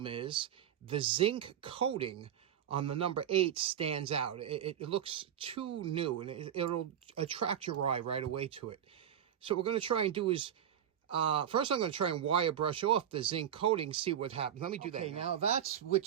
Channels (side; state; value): left; quieter; 9.7 dB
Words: is the zinc coating on the number 8 stands out. It looks too new, and it'll attract your eye right away to it. So what we're going to try and do is, first I'm going to try and wire brush off the zinc coating, see what happens. Let me do that. Okay, now that's with